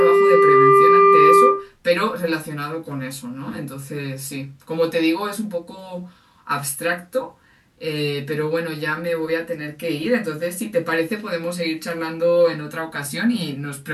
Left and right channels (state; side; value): identical; both; correlation 1.00